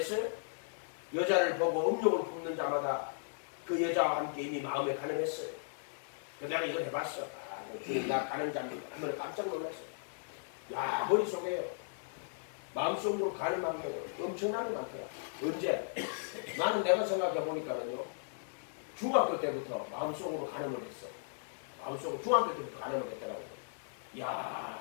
여자를 보고 음욕을 품는 자마다 그 여자와 함께 이미 마음에 가늠했어요. 그래서 내가 이걸 해봤어. 나 가늠자입니다. 한번 깜짝 놀랐어요. 야 머릿속에요. 마음속으로 가늠한 게 엄청나게 많더라. 언제? 나는 내가 생각해 보니까는요. 중학교 때부터 마음속으로 가늠을 했어. 마음속으로 중학교 때부터 가늠을 했더라고요.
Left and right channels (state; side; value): silent; right; digital silence